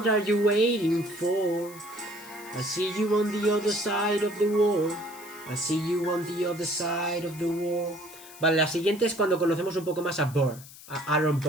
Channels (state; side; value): noise; left; hiss, 18 dB below the sound